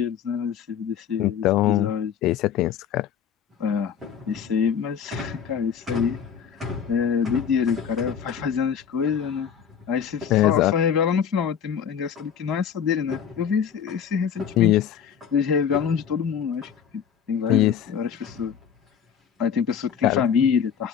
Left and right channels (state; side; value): quieter; right; 8.0 dB